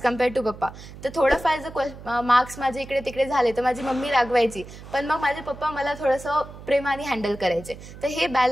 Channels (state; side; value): noise; right; hum, 15 dB below the sound